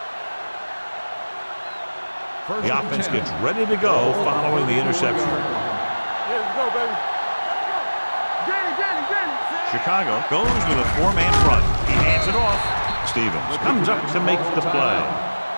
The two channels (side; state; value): both; inverted; correlation -1.00